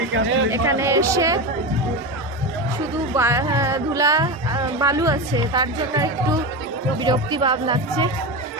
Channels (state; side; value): normal; both; correlation 0.19